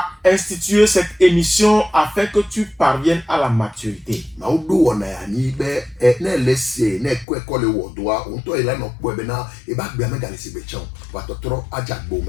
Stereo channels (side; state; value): right; drops out; at 7.2 s